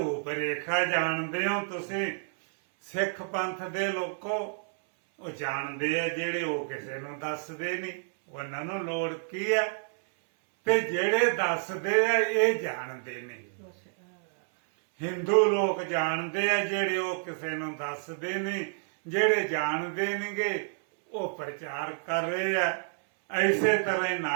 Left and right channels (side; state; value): left; silent; 58 dB below the other